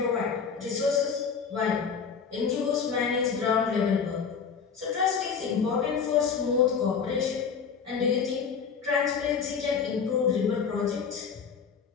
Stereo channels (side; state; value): right; quieter; 6.3 dB